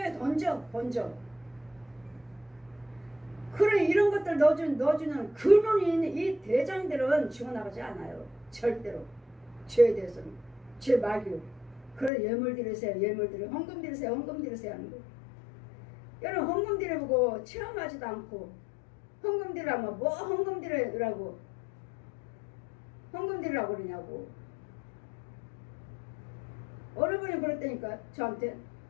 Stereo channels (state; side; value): drops out; right; at 12.1 s